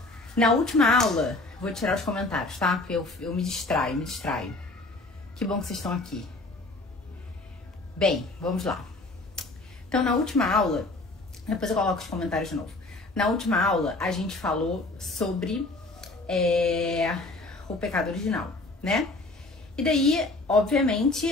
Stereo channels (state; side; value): quieter; right; 3.0 dB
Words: na última aula, vou tirar os comentários, tá? Porque eu me distraio. Que bom que vocês estão aqui. Bem, vamos lá. Então, na última aula, depois eu coloco os comentários de novo. Na última aula, a gente falou sobre o pecado original, né? E daí,